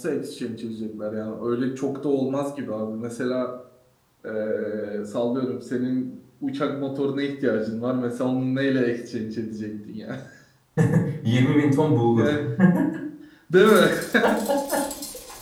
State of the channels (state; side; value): identical; both; correlation 1.00